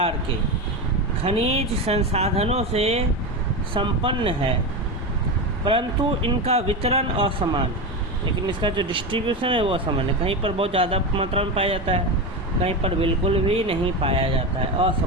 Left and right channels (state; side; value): normal; both; correlation 0.18